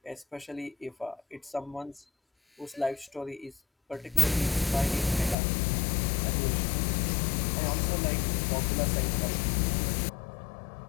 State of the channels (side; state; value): right; drops out; at 5.4 s